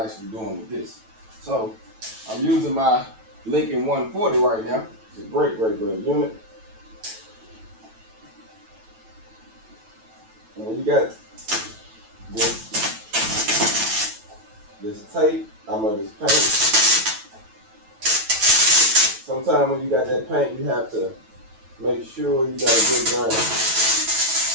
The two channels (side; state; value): left; late; 9.1 ms